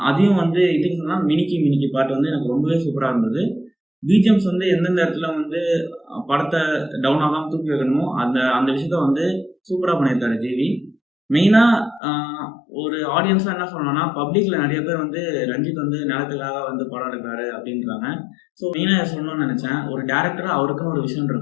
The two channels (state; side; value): drops out; right; at 12.0 s